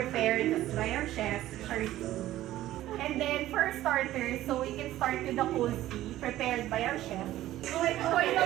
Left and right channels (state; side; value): quieter; left; 14.5 dB